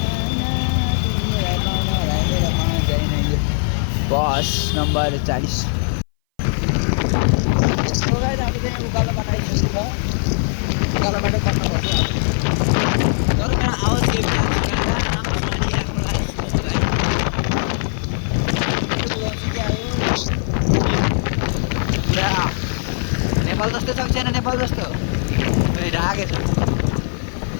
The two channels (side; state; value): right; silent; 61 dB below the other